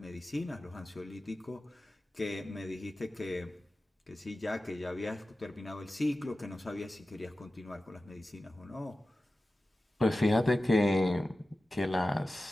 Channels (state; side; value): normal; both; correlation 0.95